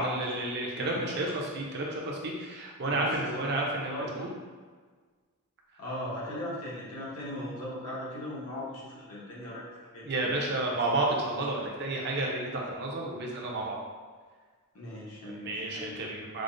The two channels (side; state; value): both; normal; correlation 0.07